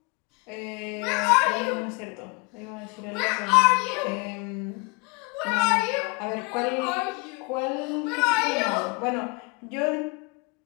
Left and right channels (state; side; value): quieter; right; 29.5 dB